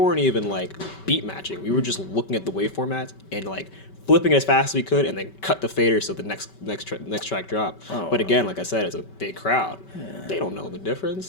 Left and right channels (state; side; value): late; right; 5.2 ms